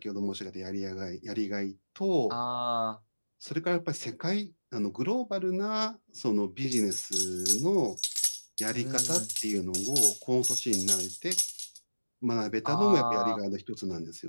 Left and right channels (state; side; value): inverted; both; correlation -1.00